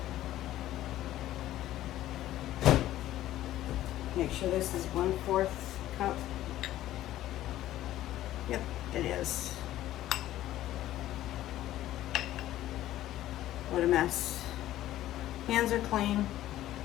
Make sure this is 1/4 cup. Yep, it is. What a mess. Hands are clean.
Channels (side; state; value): right; quieter; 14.0 dB